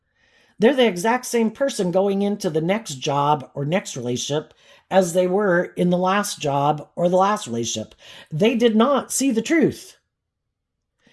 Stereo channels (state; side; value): identical; both; correlation 1.00